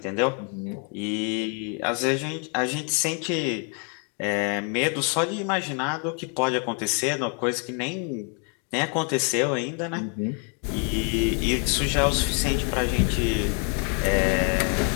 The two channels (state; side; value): quieter; right; 39.3 dB